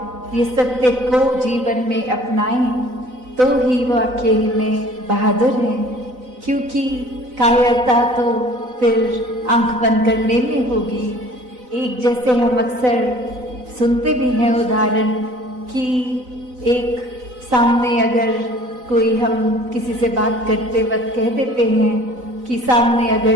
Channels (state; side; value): late; left; 4.0 ms